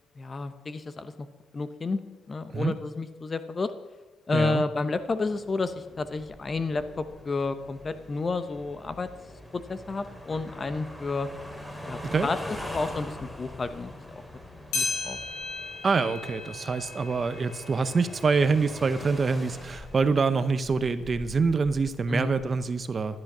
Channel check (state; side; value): normal; both; correlation 0.86